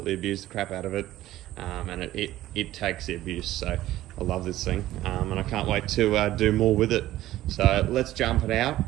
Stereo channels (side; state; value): left; quieter; 14.8 dB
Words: abused the crap out of it. And it takes the abuse, so I love this thing. And I can't wait to do more with it. So let's jump it out.